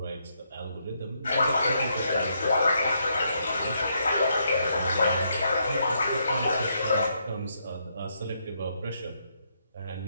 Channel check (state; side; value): inverted; both; correlation -0.77